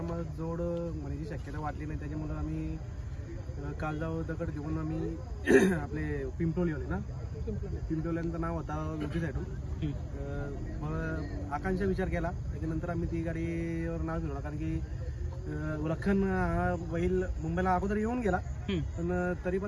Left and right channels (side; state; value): both; identical; correlation 1.00